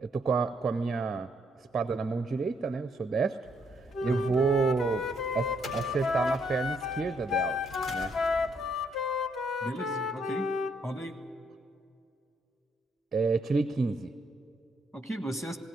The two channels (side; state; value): both; normal; correlation 0.72